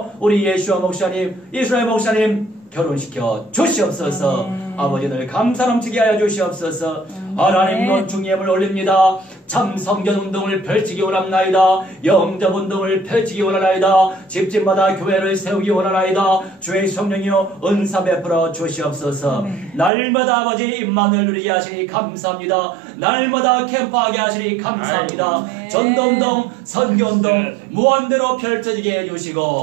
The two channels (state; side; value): drops out; left; at 19.9 s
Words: 우리 예수와 목사님 이스라엘 목사님 결혼시켜 주시옵소서. 아버지 늘 감사 넘치게 하여 주시옵소서. 하나님 건중예물 올립니다. 참 성전운동을 펼치기 원합나이다. 영접운동을 펼치기 원하나이다. 집집마다 교회를 세우기 원하나이다. 주의 성령이여 은사 베풀어 주시옵소서. 날마다 아버지 임만을 누리게 하시니 감사합니다. 날마다 캠프하게 하시니 감사합니다. 전도운동 선교운동 무한대로 펼쳐지게